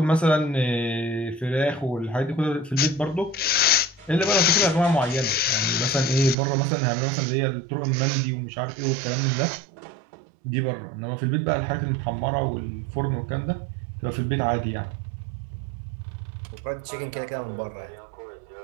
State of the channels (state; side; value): drops out; left; at 6.4 s